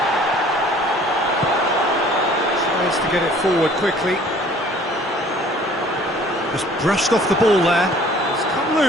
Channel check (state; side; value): normal; both; correlation 0.53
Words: Tries to get it forward quickly. Just brushed off the ball there. It's come